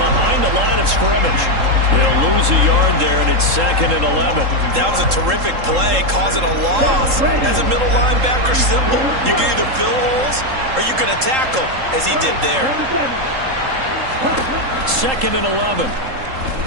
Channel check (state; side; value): late; left; 3.7 ms